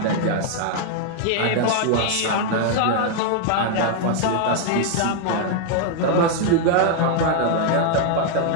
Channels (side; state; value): both; different; correlation 0.00